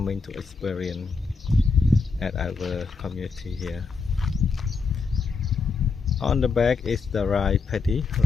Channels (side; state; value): right; quieter; 4.6 dB